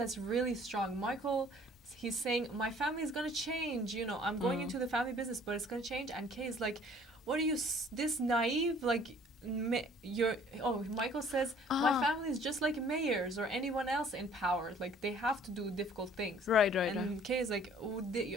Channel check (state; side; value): normal; both; correlation 0.55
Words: really strong. Michael, he's saying, my family is going to change. You know, I'm going into the family business, but it's going to change. And Kay is like, what are you, this naive? Like, Michael says, my family is just like mayors or anyone else in power. Like, they have to do difficult things. Right. And Kay is like,